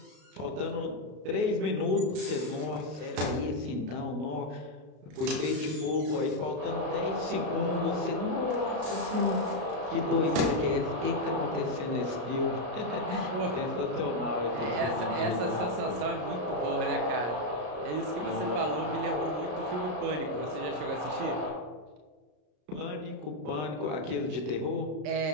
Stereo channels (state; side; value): late; left; 33 ms